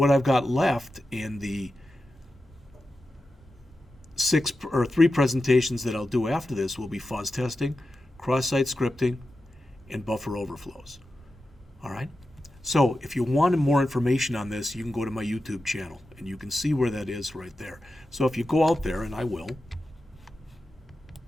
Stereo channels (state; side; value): normal; both; correlation 0.91